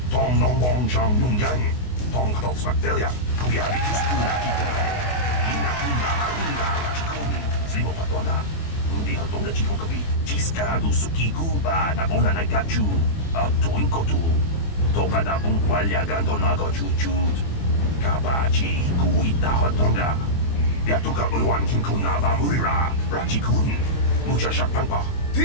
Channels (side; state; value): right; late; 24 ms